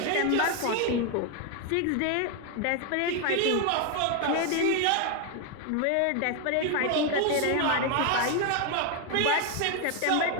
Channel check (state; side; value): different; both; correlation 0.01